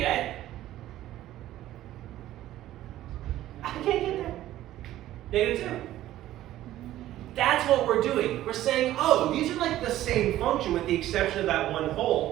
I can't get there. -2. That's what we're doing. We're saying, oh, these are like the same function with the exception of that one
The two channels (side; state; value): left; quieter; 14.0 dB